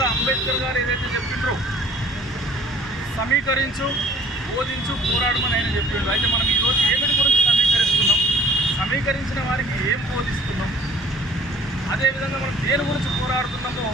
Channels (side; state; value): both; normal; correlation 0.51